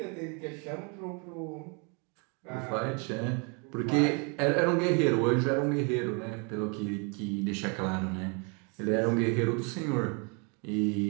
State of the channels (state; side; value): quieter; left; 34.6 dB